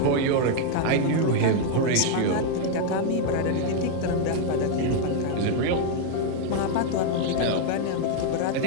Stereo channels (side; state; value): both; different; correlation 0.00